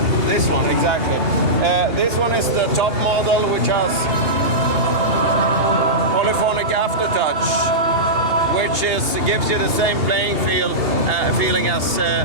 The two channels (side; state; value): left; late; 2.7 ms